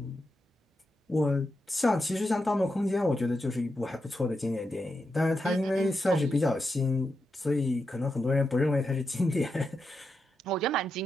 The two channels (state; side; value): normal; both; correlation 0.86